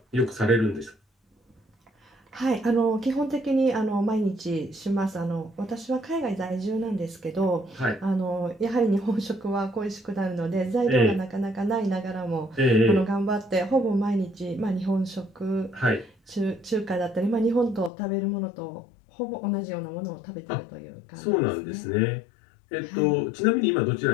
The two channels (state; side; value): drops out; right; at 17.9 s